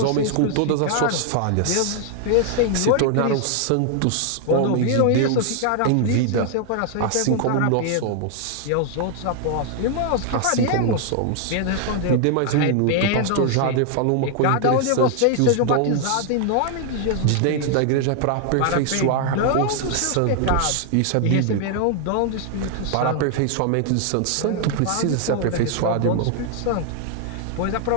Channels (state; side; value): different; both; correlation 0.00